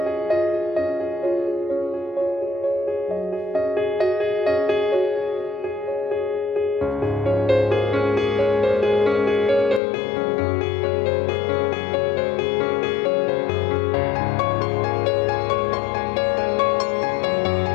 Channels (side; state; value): right; drops out; at 9.8 s